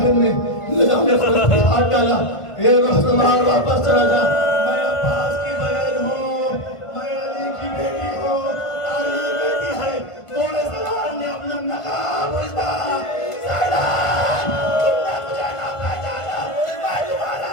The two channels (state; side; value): late; right; 1.5 ms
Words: نے نظام خلق پہ ہاتھ ڈالا، اے روح سوار واپس چلا جا، میں عباس کی بہن ہوں، میں علی کی بیٹی ہوں۔ تاریخ کہتی ہے گھوڑے سوار نے اپنا نقاب اتارا، زینب تم نے مجھے نہ پہچانا، میں تمہارا